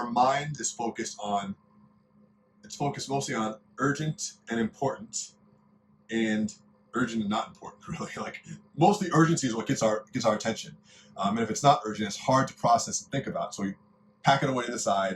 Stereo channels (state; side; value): identical; both; correlation 1.00